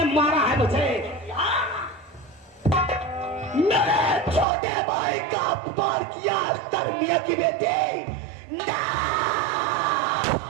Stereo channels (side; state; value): left; drops out; at 4.5 s